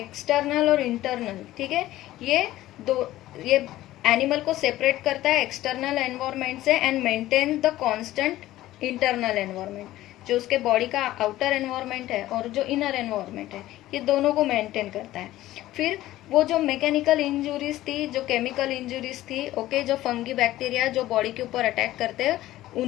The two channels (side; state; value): right; quieter; 15.4 dB